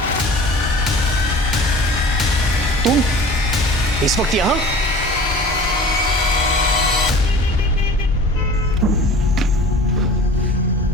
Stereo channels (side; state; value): both; normal; correlation 0.41